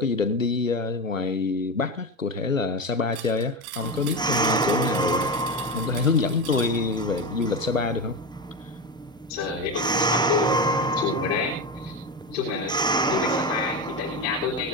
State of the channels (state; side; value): normal; both; correlation 0.19